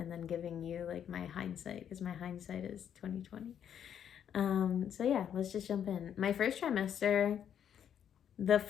then giving you my hindsight, because my hindsight is 2020. So yeah, let's just jump in. My first trimester, the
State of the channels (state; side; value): quieter; right; 9.0 dB